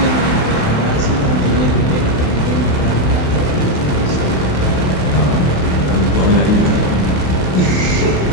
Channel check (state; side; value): late; right; 28 ms